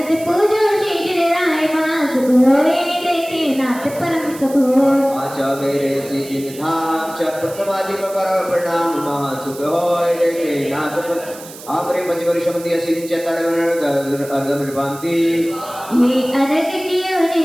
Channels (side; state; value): right; noise; hiss, 16 dB below the sound